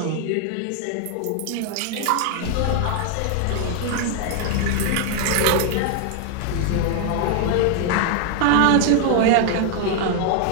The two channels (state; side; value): different; both; correlation 0.00